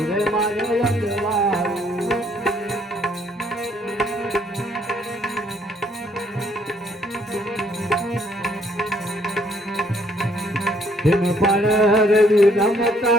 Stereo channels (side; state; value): both; normal; correlation 0.66